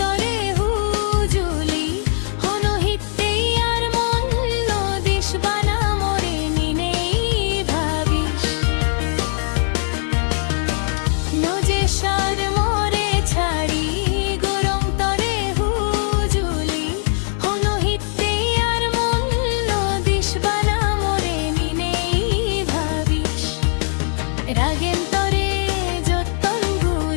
hujuli, hono hitte ar mon no dish bana more ninei bhabish. Noje shar more chari, gorong tore hujuli, hono hitte ar mon no dish bana more ninei bhabish. Ragen tore যতন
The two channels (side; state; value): right; silent; 57 dB below the other